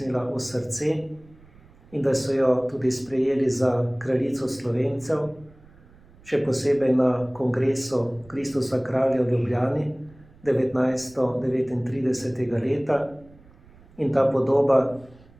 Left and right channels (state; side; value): noise; right; rumble, 25 dB below the sound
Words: v srce in da so jo tudi sprejeli za kraljico Slovencev, še posebej na kongresu Kristusa kralja v Ljubljani 1939. leta, in ta podoba